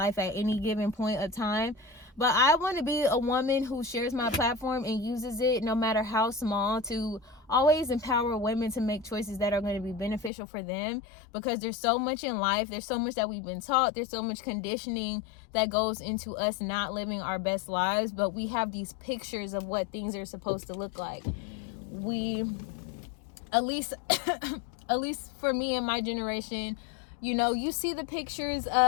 at any given point of time. But I want to be a woman who shares my platform and uses it, no matter how small, to always empower women to make choices that are going to be beneficial for them, because there's so much in life. There's so much that we've been taught. There's so much conditioning that goes into us not living our best lives, but we have these pictures of what things are supposed to look like. At least for me and my generation, you see the pictures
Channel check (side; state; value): right; drops out; at 10.3 s